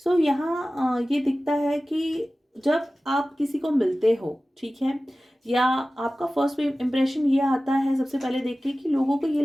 यहाँ ये दिखता है कि जब आप किसी को मिलते हो, ठीक है, या आपका फर्स्ट इम्प्रेशन ये आता है सबसे पहले देख के कि लोगों को ये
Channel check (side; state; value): both; normal; correlation 0.96